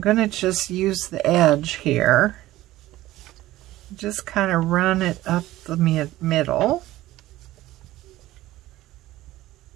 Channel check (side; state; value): left; quieter; 16.2 dB